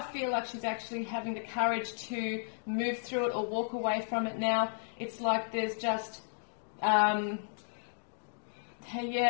feel like she's actually having the courage to move through it or walk away from it now. It's like there's just, they're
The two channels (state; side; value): silent; right; digital silence